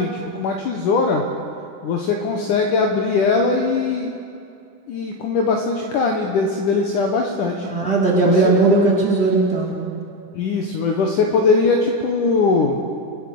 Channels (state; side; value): late; right; 10 ms